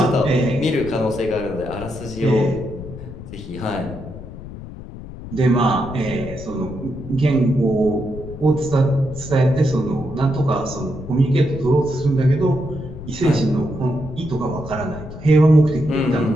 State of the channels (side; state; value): left; noise; rumble, 12 dB below the sound